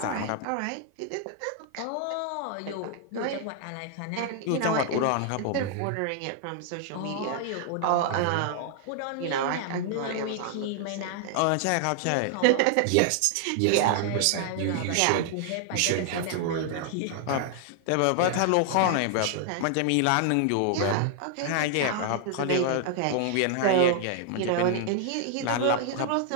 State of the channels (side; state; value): both; different; correlation 0.00